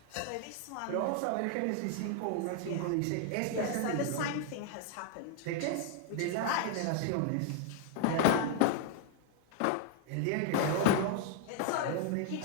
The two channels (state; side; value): different; both; correlation 0.00